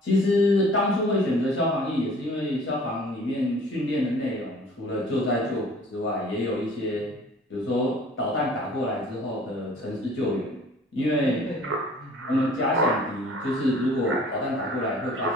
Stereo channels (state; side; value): normal; both; correlation 0.50